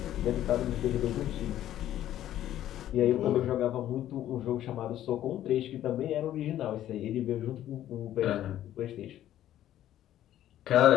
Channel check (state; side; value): quieter; right; 12.4 dB